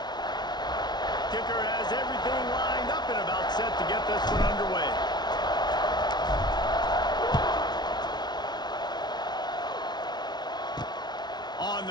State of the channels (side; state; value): right; late; 0.20 ms